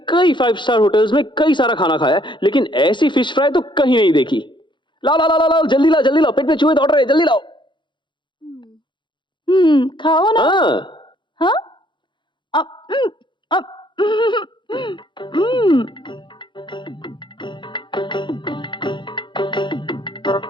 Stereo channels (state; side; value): late; right; 0.23 ms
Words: कई 5 स्टार होटल्स में कई सारा खाना खाया है, लेकिन ऐसी फिश फ्राई तो कहीं नहीं देखी। लाओ लाओ लाओ लाओ, जल्दी लाओ जल्दी लाओ, पेट में चूहे दौड़ रहे हैं, जल्दी लाओ। खाओ ना। हाँ,